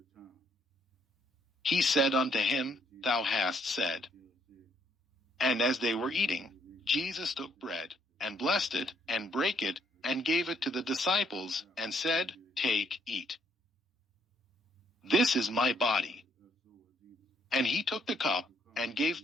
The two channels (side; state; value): both; normal; correlation 0.70